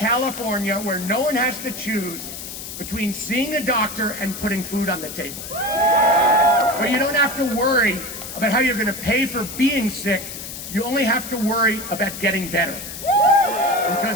where no one has to choose between seeing a doctor and putting food on the table. Where you don't have to worry about how you're going to pay for being sick. You only have to worry about getting better.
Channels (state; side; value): noise; left; hiss, 10 dB below the sound